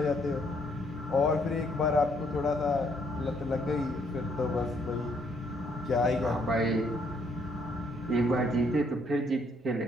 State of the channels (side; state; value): both; normal; correlation 0.69